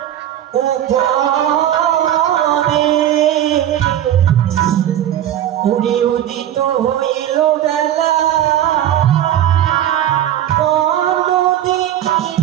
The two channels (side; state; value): left; quieter; 11.5 dB